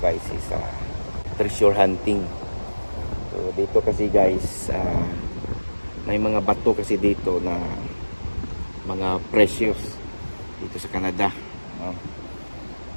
is treasure hunting. So dito kasi guys, may mga bato kasi dito na mga precious dito sa Canada, no?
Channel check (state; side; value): inverted; both; correlation -1.00